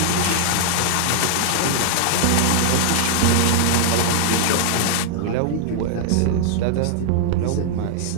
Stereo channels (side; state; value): both; different; correlation -0.01